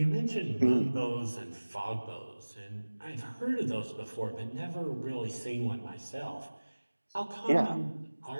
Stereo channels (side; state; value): both; inverted; correlation -1.00